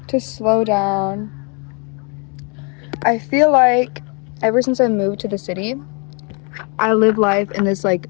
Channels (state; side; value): quieter; right; 34.9 dB